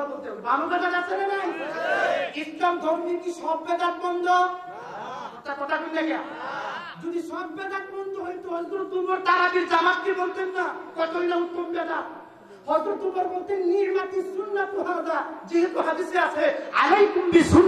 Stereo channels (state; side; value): identical; both; correlation 1.00